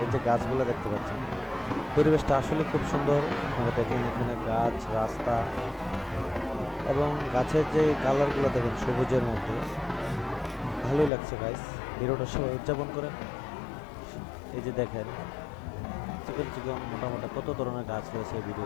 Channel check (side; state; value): right; drops out; at 11.1 s